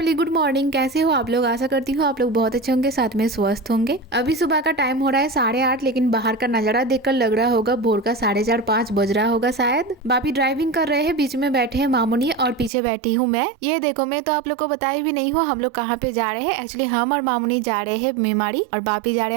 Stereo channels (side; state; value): left; drops out; at 12.7 s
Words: good morning. कैसे हो आप लोग? आशा करती हूँ आप लोग बहुत अच्छे होंगे, साथ में स्वस्थ होंगे। अभी सुबह का टाइम हो रहा है 8:30, लेकिन बाहर का नजारा देखकर लग रहा होगा भोर का 4:30-5 बज रहा होगा शायद। बापी ड्राइविंग कर रहे हैं, बीच में बैठे हैं मामूनी और पीछे बैठी हूँ मैं। ये देखो, मैं तो आप लोग को बताई भी नहीं हूँ हम लोग कहाँ पे जा रहे हैं। एक्चुअली हम और मामूनी जा रहे हैं मेमाड़ी और बापी जा रहे